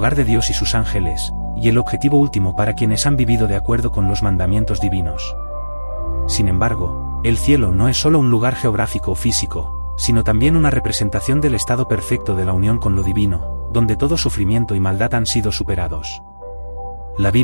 de Dios y sus ángeles, y el objetivo último para quienes han vivido de acuerdo con los mandamientos divinos. Sin embargo, el cielo no es solo un lugar geográfico o físico, sino también una representación del estado perfecto de la unión con lo divino, donde todo sufrimiento y maldad han sido superados. La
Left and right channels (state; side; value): inverted; both; correlation -1.00